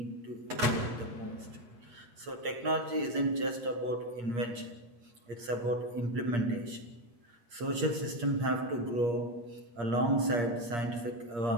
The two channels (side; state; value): left; late; 8.5 ms